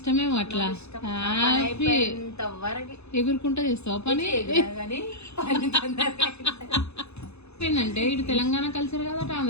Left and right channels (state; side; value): late; right; 0.80 ms